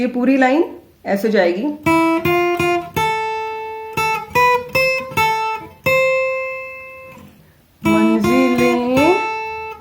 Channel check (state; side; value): identical; both; correlation 1.00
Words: पूरी लाइन ऐसे जाएगी। मंजिले